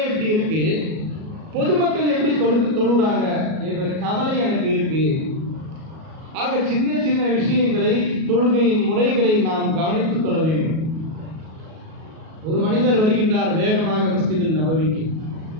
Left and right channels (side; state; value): left; late; 37 ms